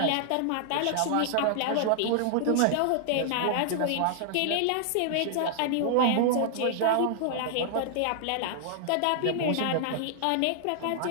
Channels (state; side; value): different; both; correlation -0.01